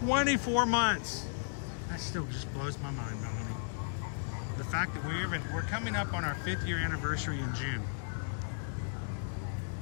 months. That still just blows my mind, Melanie. The fact that we're coming up on our 5th year anniversary in June.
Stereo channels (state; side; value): silent; right; digital silence